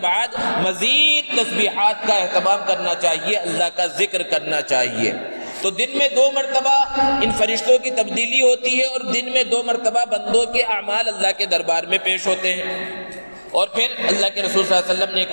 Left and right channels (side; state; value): both; inverted; correlation -1.00